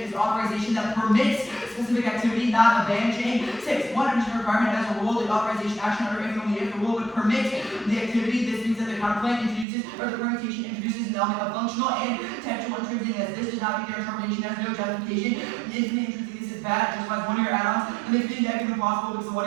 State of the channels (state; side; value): drops out; left; at 9.7 s